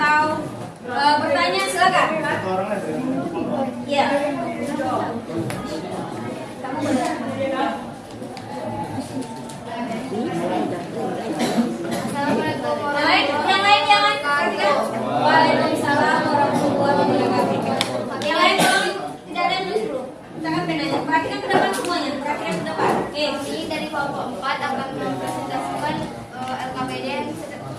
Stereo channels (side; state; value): both; identical; correlation 1.00